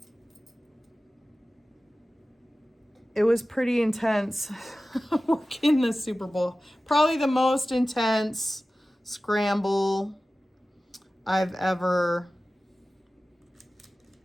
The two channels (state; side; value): normal; both; correlation 0.96